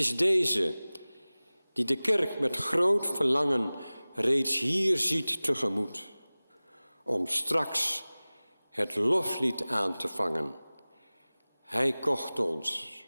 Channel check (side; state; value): both; inverted; correlation -0.99